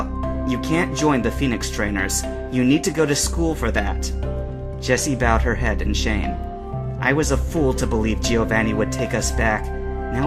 "You can't join the Phoenix trainers. You need to go to school for that." Jessie bowed her head in shame. "I was a fool to believe Giovanni would take us back.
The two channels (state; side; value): identical; both; correlation 1.00